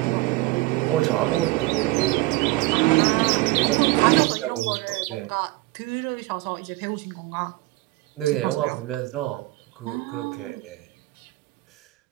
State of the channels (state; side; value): quieter; left; 20.5 dB